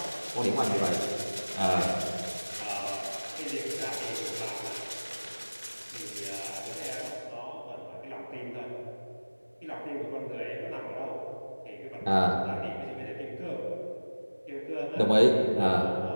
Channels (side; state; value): both; inverted; correlation -1.00